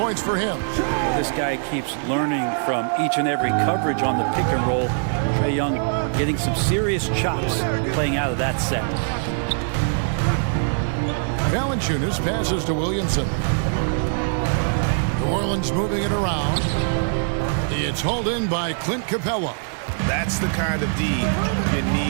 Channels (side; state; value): left; silent; 56 dB below the other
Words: for him. Well, this guy keeps learning from each and every coverage on the pick and roll. Trae Young getting some serious chops playing out of that set. Valanciunas passes to Williamson. New Orleans moving it around. It's hauled in by Clint Capella. That's the kind of D you